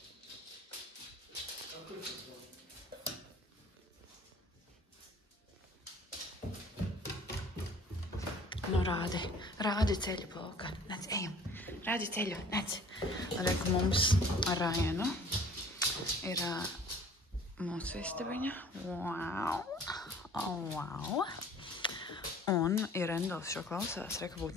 Nu, rādi ceļu, Poka. Nec, ejam. Rādi ceļu, nec. Reku mums ar Rajanu ir mūsu istabiņa. Wow. Oh, wow. Un, ja Rendals šo klausās, reku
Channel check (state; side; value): normal; both; correlation 0.51